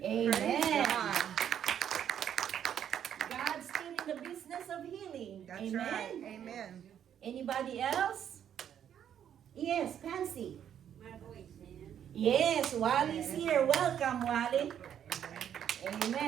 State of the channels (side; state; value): left; quieter; 9.4 dB